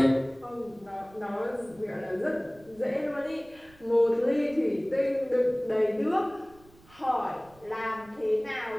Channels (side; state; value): right; noise; rumble, 26 dB below the sound